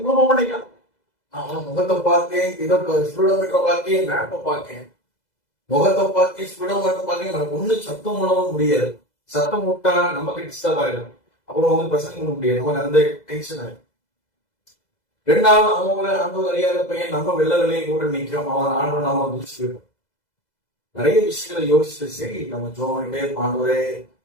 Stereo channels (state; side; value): late; right; 2.0 ms